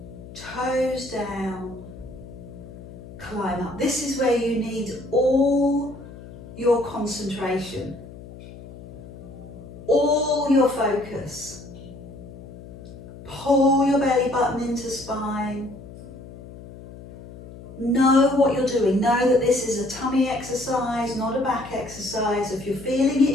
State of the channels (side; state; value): left; noise; hum, 16 dB below the sound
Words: toes down, climb up. This is where you need all your concentration, all your focus. Pull your belly button into spine. Know what you're doing. Know that this is a tummy exercise, not a back exercise. If you're feeling